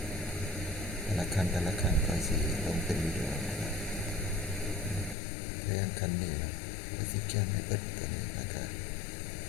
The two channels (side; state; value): right; drops out; at 5.2 s